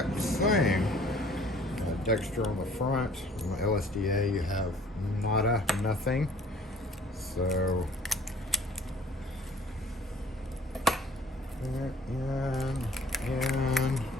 same. Dexter on the front. On the LSDA, you have nada, nothing. So, in,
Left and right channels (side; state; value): both; normal; correlation 0.54